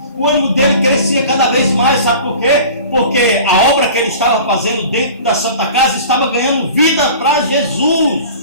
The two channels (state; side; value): inverted; both; correlation -0.41